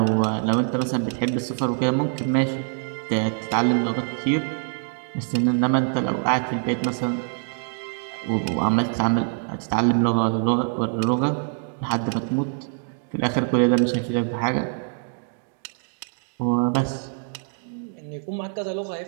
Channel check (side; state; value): left; silent; 62 dB below the other